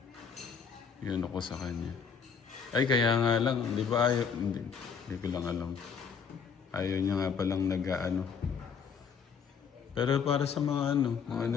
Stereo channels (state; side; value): quieter; right; 6.4 dB